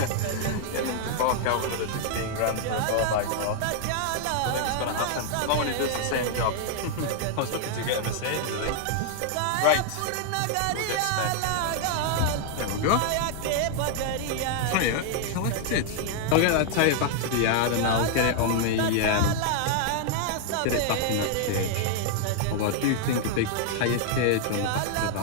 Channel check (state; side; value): different; both; correlation 0.00